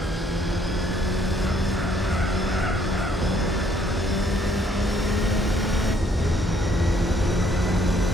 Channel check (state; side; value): normal; both; correlation 0.66